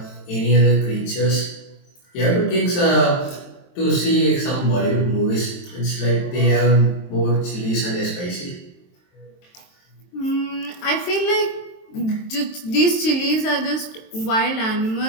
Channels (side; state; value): right; late; 23 ms